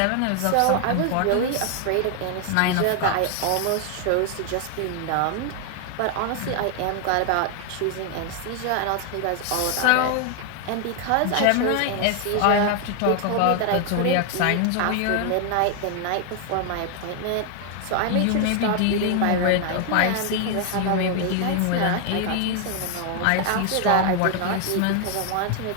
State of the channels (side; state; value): both; different; correlation 0.00